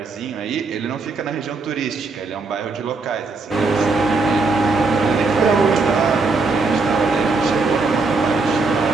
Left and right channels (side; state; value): left; quieter; 3.9 dB